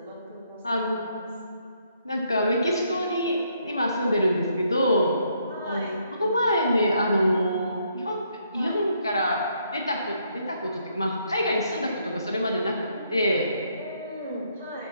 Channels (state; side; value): inverted; both; correlation -0.72